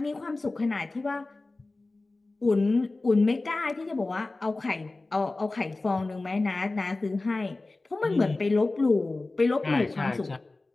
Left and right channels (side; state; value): right; quieter; 3.2 dB